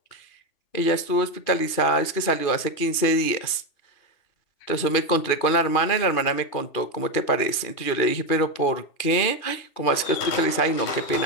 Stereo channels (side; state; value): right; late; 2.5 ms